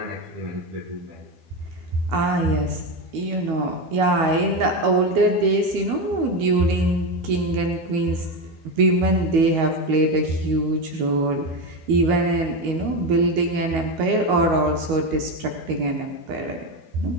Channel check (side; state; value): left; late; 12 ms